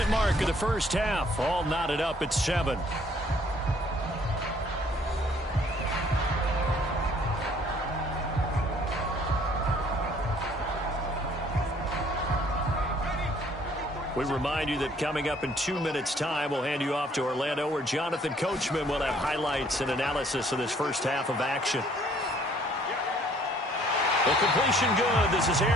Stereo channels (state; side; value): normal; both; correlation 0.60